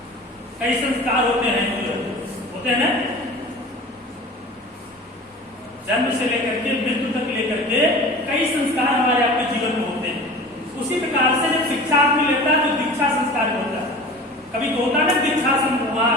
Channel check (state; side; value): normal; both; correlation 0.38